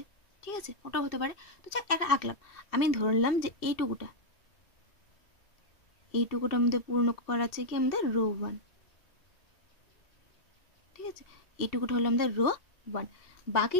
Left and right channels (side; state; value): right; late; 2.7 ms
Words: ঠিক আছে, ওটাও হতে পারে। তো যাক একটা আঁকলাম, আমি ধরলাম যে এইটুকুটা আমাদের পূর্ণ করা আছে কি আমাদের রো ওয়ান। ঠিক আছে, এইটুকুটা হলো আমাদের রো ওয়ান,